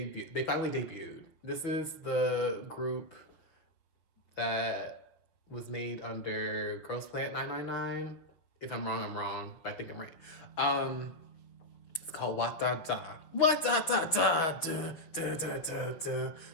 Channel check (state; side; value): late; right; 5.9 ms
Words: They finally debuted. This is the group that was made under Girls Planet 999. If I'm wrong, I'm wrong, but I think I'm right. It's called WaDaDa. WaDaDa, da da da da da,